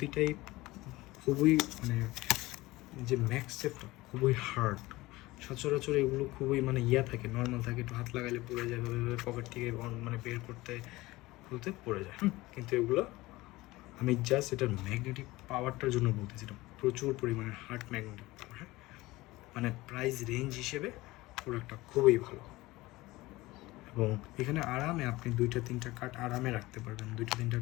খুবই মানে যে ম্যাক্সেফটা খুবই হার্ড। সচরাচর এগুলো খুবই মানে থাকে, নর্মাল থাকে, একটু হাত লাগাইলে পড়ে যায়, পকেট থেকে মানে বের করতে খুলতে পড়ে যায়। কিন্তু এগুলো আমি জাস্ট এটার ম্যাগনেটিক পাওয়ারটার জন্য বলতেছি, এটা প্রচুর পরিমাণে হার্ড ম্যাগনেটিক পাওয়ার। মানে প্রাইস রেঞ্জ হিসেবে প্রোডাক্টটা খুবই ভালো। এবং এখানে আরামে আপনি 2-3টা কার্ড আরামে রাখতে পারবেন। 2-3টা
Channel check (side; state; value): right; quieter; 19.6 dB